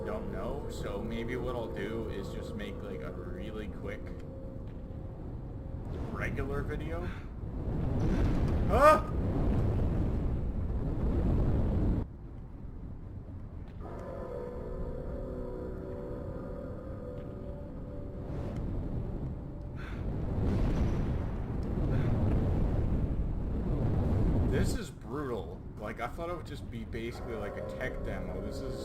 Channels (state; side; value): identical; both; correlation 1.00